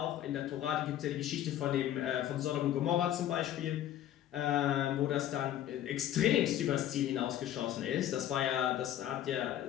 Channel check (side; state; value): right; quieter; 11.9 dB